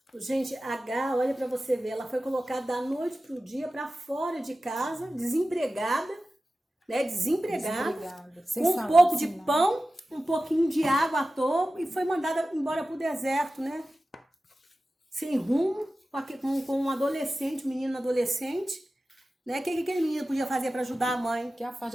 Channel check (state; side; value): normal; both; correlation 0.95